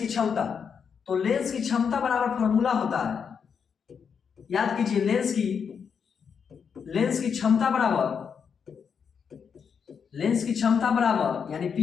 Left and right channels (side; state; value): right; quieter; 6.7 dB